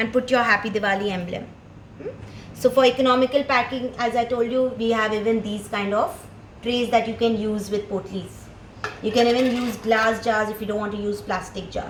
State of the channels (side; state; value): both; identical; correlation 1.00